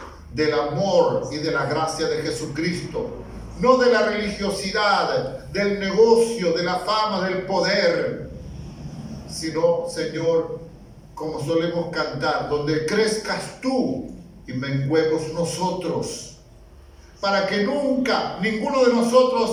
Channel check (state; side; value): identical; both; correlation 1.00